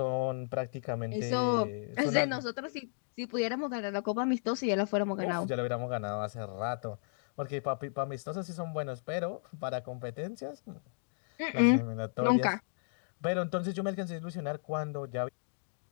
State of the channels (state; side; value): silent; right; digital silence